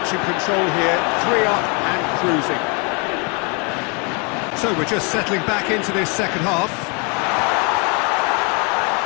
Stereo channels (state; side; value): quieter; right; 32.3 dB